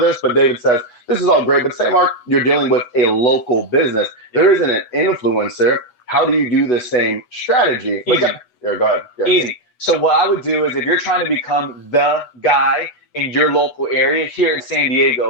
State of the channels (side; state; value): right; late; 8.1 ms